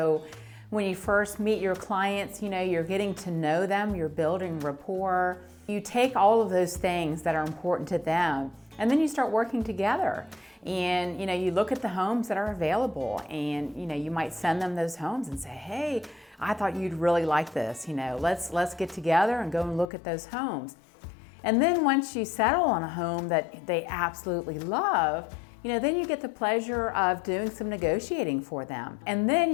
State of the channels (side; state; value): right; drops out; at 19.9 s